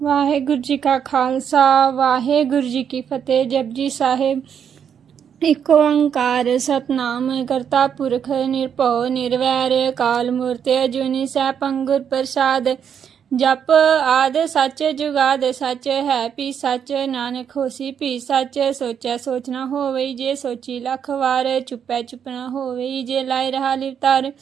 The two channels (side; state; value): left; quieter; 8.0 dB